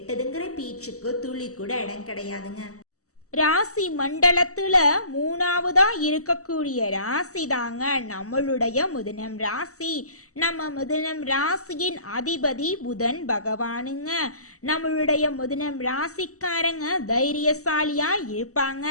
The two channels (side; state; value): right; late; 0.65 ms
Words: பேச்சுக்கு துளி கூட இடம் கிடையாதுங்க. ராசி மண்டலத்துல 3வதா இருக்கக்கூடிய ராசி தாங்க நம்மளுடைய மிதுனம் ராசி. நம்ம மிதுனம் ராசியின் அதிபதி புதன் பகவானுங்க. நம்மளுடைய மிதுனம் ராசிக்காரங்க தைரியசாலியா இருப்பாங்க.